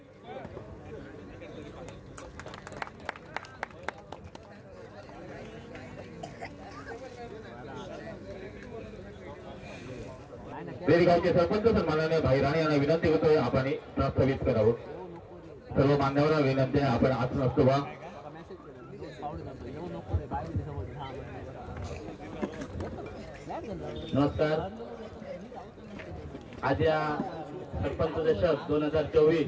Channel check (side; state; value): both; identical; correlation 1.00